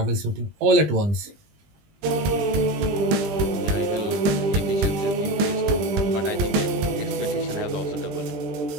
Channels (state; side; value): late; left; 20 ms